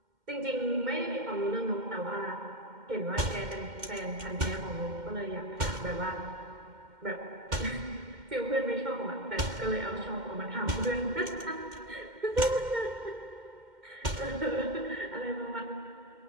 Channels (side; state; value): left; late; 2.1 ms